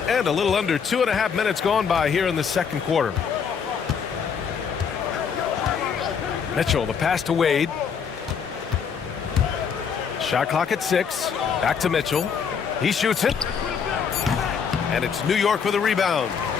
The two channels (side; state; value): right; quieter; 6.7 dB